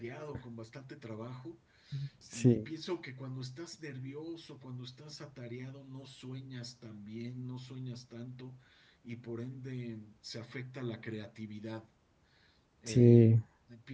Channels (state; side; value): identical; both; correlation 1.00